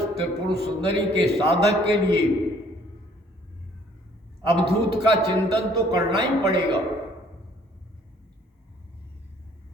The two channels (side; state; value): both; normal; correlation 0.60